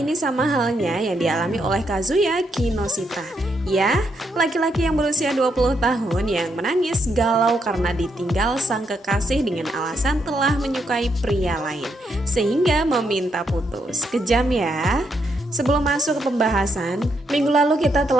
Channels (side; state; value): both; normal; correlation 0.78